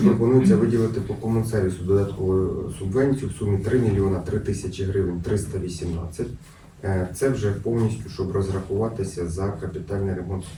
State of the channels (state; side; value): identical; both; correlation 1.00